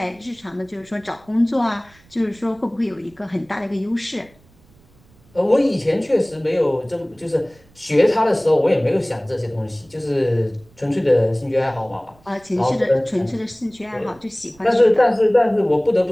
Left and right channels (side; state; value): right; noise; rumble, 29 dB below the sound